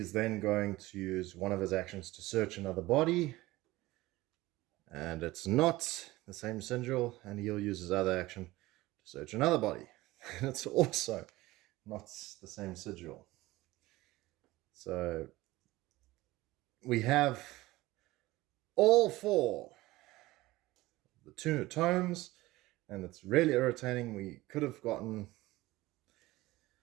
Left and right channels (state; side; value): quieter; left; 18.8 dB